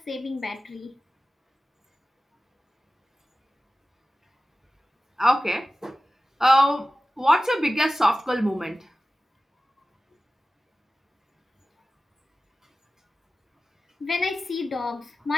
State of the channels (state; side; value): normal; both; correlation 0.96